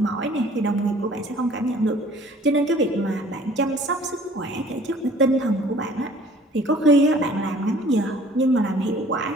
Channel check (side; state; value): both; normal; correlation 0.52